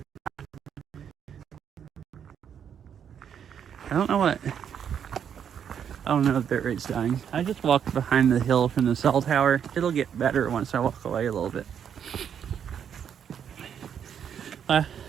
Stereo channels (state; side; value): quieter; left; 8.3 dB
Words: I don't know what. Oh no, the bit rate's dying. I just walked behind the hill from the cell tower. It'll get better once I walk away a little bit. I